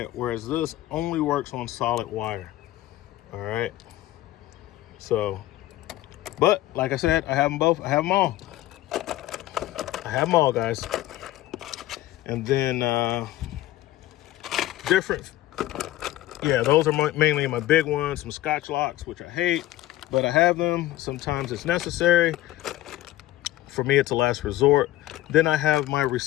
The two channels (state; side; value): quieter; right; 15.5 dB